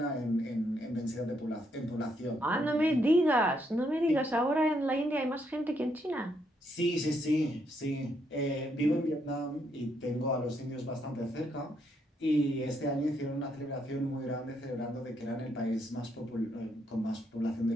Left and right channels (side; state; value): both; normal; correlation 0.75